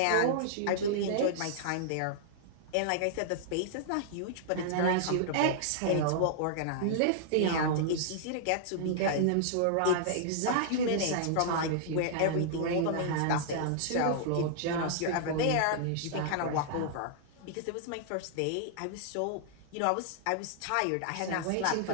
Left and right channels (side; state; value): both; different; correlation -0.01